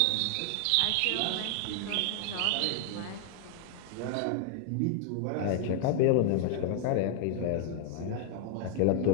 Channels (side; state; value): both; different; correlation 0.00